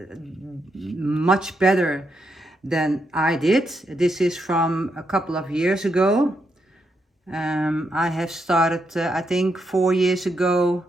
much better than I did. This is from a couple of years ago. I have started I think 4 years ago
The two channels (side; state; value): both; normal; correlation 0.81